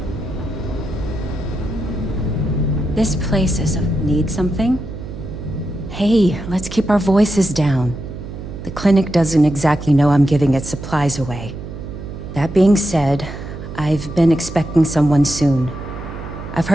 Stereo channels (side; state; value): right; noise; hum, 10 dB below the sound